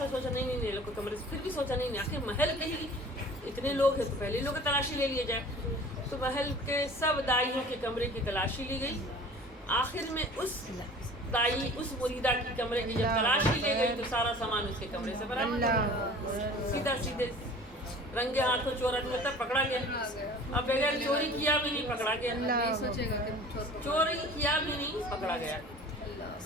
سوچا نہیں لوگ کمرے سے, پھر بھی سوچا نہیں آخر محل کہیں اتنے لوگ ہیں تو پہلے لوگ تلاشی لے لیے جائے. تو محل کے سب دائیوں کے کمرے کی تلاشی لی گئی. آخر میں اس دائی اس مریدہ کی کمرے کی جب تلاشی لے گئی تو سارا سامان اس کے کمرے سے برآمد ہوا. سیدھے رنگے ہاتھوں چور تب پکڑا گیا. اب بغیر چوری کیا بھی نہیں پکڑا گیا, چوری کیا بھی نہیں پکڑا گیا.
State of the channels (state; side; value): normal; both; correlation 0.44